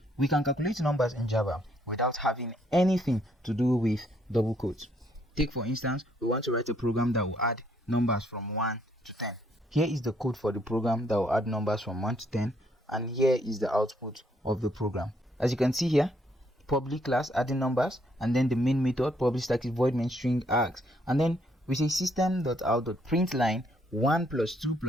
We can calculate numbers in Java without having anything to do with double quotes. Take for instance, we want to write a program that will add numbers from 1 to 10. Here is the code for the program that will add numbers from 1 to 10, and here is the output of the program. As you can see here, public class adding numbers, and then the main method public static void main string args, and then we say system.out.println 1 plus 2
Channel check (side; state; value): both; normal; correlation 0.69